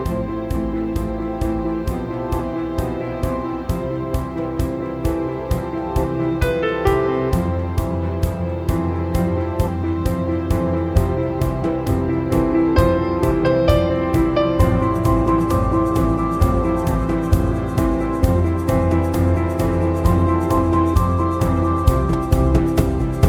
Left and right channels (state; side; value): identical; both; correlation 1.00